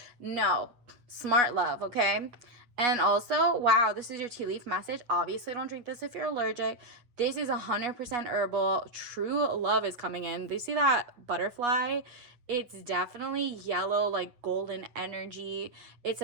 No, smart love, okay? And also, wow, this is your tea leaf message. Obviously, don't drink this if you're allergic. This is 100% herbal. True love is coming in. Do you see that butterfly? It's definitely yellow, like golden energy. It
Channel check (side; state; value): left; late; 8.1 ms